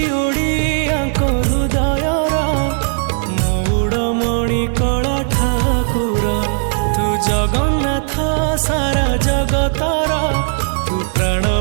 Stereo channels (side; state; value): left; silent; 68 dB below the other